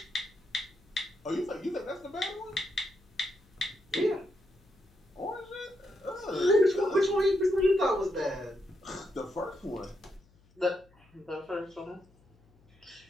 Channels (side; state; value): left; noise; hum, 30 dB below the sound